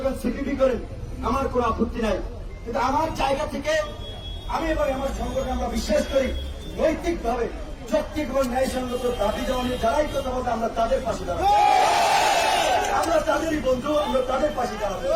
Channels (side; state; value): both; identical; correlation 1.00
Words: করেন, সিপিবি করেন, আমার কোন আপত্তি নাই। কিন্তু আমার জায়গা থেকে আমি এবং আমার সংগঠন আমরা বিশ্বাস করি, নৈতিকভাবে যৌক্তিক এবং ন্যায়সঙ্গত দাবি দেওয়া নিয়ে যারাই কথা বলতে, আমরা তাদের পাশে দাঁড়াবো। আমরা তাদেরই বন্ধু, আমরা তাদের পাশে দাঁড়াবো।